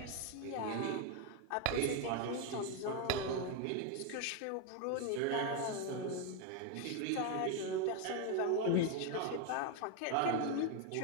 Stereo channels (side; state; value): both; different; correlation 0.02